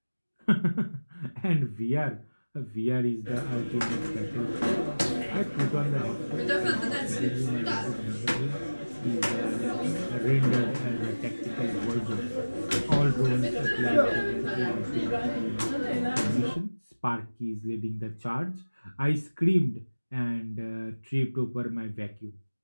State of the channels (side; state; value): both; inverted; correlation -1.00